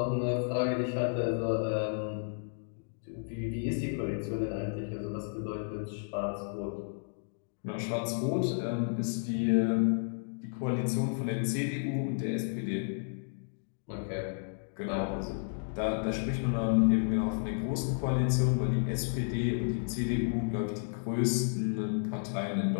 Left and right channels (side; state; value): right; silent; digital silence